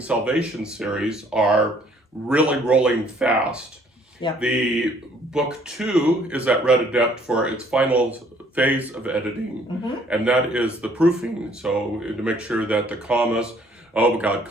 Salvation series are really rolling fast. Yeah. The book 2 is at Red Adept for its final phase of editing, and that is the proofing. So to make sure that the commas, oh my God,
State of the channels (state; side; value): normal; both; correlation 0.61